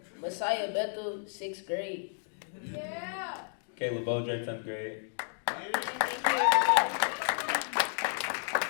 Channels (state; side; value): silent; right; digital silence